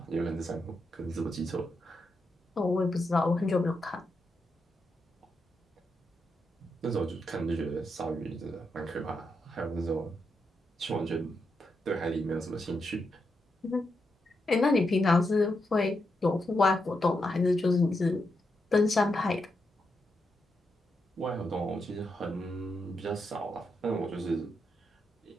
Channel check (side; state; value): both; normal; correlation 0.84